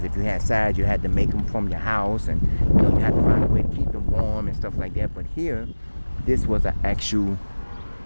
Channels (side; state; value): both; inverted; correlation -1.00